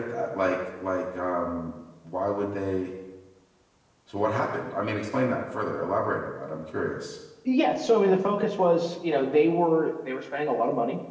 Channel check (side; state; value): both; identical; correlation 1.00